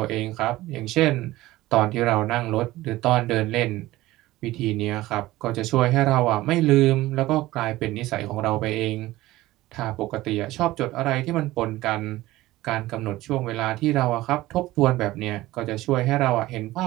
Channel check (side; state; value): left; quieter; 17.3 dB